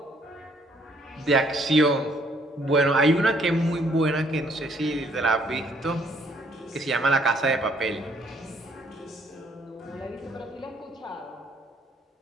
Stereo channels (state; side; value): normal; both; correlation 0.65